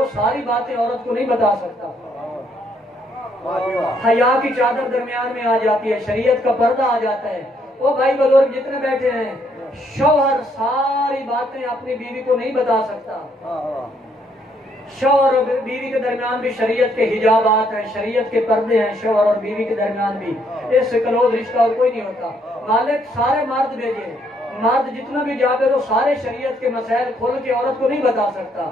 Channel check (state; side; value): normal; both; correlation 0.71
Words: ساری باتیں عورت کو نہیں بتا سکتا. حیا کی چادر درمیان میں آ جاتی ہے، شریعت کا پردہ آ جاتا ہے. وہ بھائی بزرگ جتنے بیٹھے ہیں، شوہر ساری باتیں اپنی بیوی کو نہیں بتا سکتا. شوہر اور بیوی کے درمیان بھی شریعت کے حجابات ہیں، شریعت کے پردے ہیں. شوہر اور بیوی کے درمیان بھی اس سے کلوز رشتہ اور کوئی نہیں ہوتا. مالک سارے مرد بھیجے. مرد جتنا بھی جاگے تو سارے شریعت کے مسائل کھول کے عورت کو نہیں بتا سکتا.